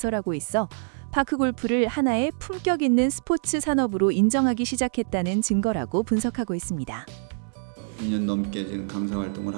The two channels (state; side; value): silent; left; digital silence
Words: 있어 파크골프를 하나의 품격 있는 스포츠 산업으로 인정하기 시작했다는 증거라고 분석하고 있습니다. 2년 넘게 지금 강사 활동을